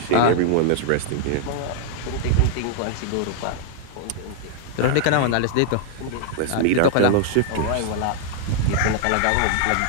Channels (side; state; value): both; different; correlation -0.01